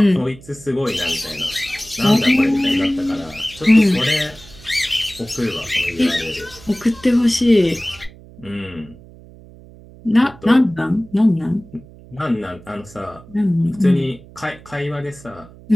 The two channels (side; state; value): right; noise; hum, 21 dB below the sound